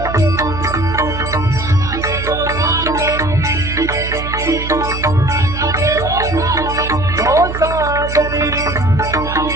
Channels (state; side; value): noise; right; hum, 7 dB below the sound